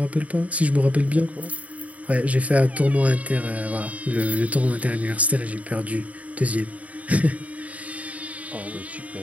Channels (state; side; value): late; left; 0.069 ms